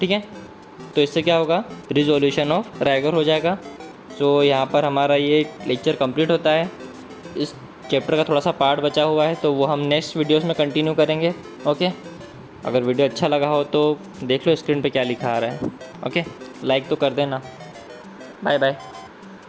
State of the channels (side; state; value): both; identical; correlation 1.00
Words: है। तो इससे क्या होगा, रिजोल्यूशन ऑफ रैगर हो जाएगा। सो यहाँ पर हमारा ये लेक्चर कंप्लीट होता है। इस चैप्टर का थोड़ा सा पार्ट बचा हुआ है तो वो हम नेक्स्ट वीडियोस में कंटिन्यू करेंगे, ओके। अगर वीडियो अच्छा लगा हो तो देख लो स्क्रीन पे क्या लिखा आ रहा है, ओके। लाइक तो कर देना। बाय बाय।